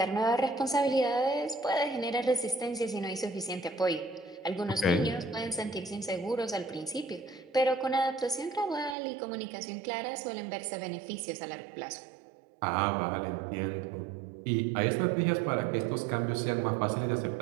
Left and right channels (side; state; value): left; drops out; at 9.0 s